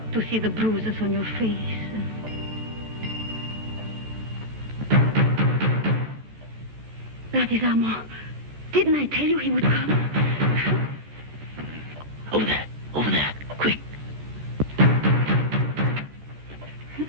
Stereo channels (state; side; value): late; left; 13 ms